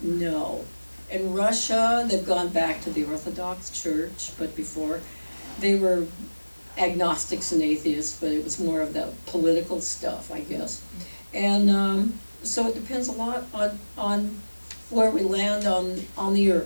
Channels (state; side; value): inverted; both; correlation -1.00